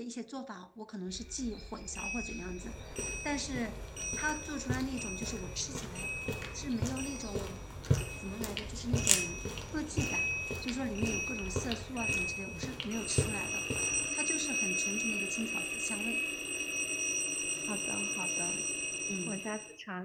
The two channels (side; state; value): both; identical; correlation 1.00